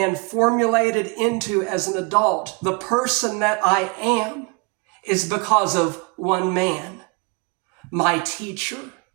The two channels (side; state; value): left; quieter; 30.5 dB